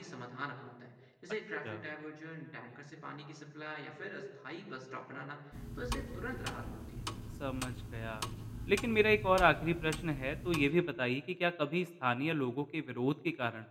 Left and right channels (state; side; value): identical; both; correlation 1.00